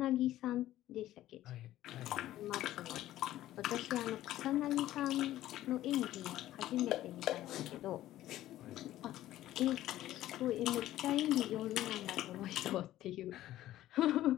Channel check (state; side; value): quieter; right; 14.1 dB